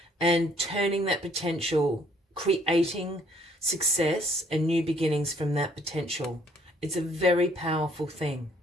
and turning that potential, creating success and new beginnings from that potential. It's a very powerful thing.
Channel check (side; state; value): both; normal; correlation 0.64